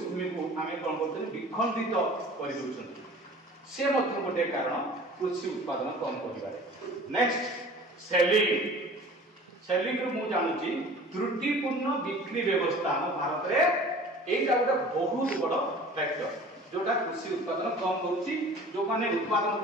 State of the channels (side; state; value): both; normal; correlation 0.44